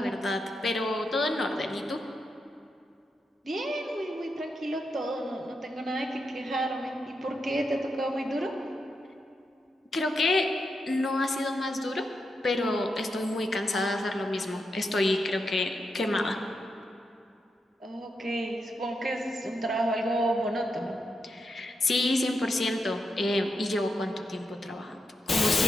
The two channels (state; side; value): normal; both; correlation 0.84